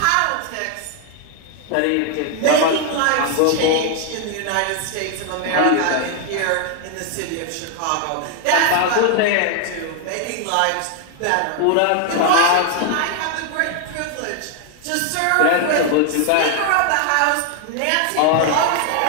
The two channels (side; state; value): both; different; correlation 0.00